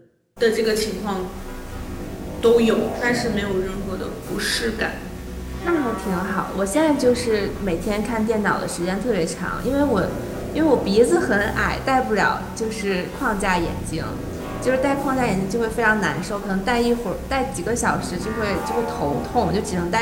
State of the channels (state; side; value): identical; both; correlation 1.00